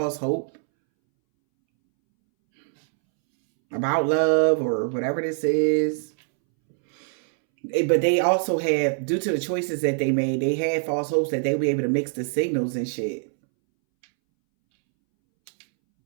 hope about love or whatever this is. But they also have, due to the choices that they made, they had false hopes that they'll be able to mix the signals and shit.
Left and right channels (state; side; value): silent; left; 63 dB below the other